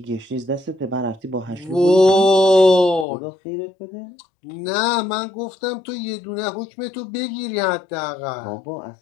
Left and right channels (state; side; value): drops out; right; at 3.1 s